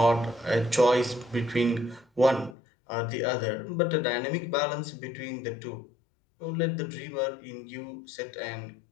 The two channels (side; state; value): right; drops out; at 2.6 s